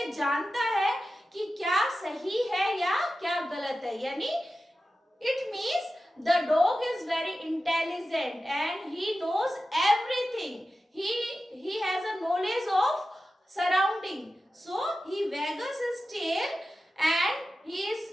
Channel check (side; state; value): both; normal; correlation 0.93